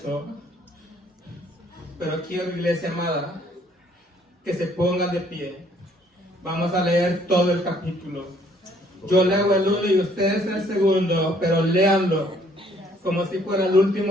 pero quiero, iglesia amada, que se pongan de pie. Vamos a leer todo el capítulo. Yo leo el uno y ustedes el segundo, pero léanlo como si fuera el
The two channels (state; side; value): normal; both; correlation 0.63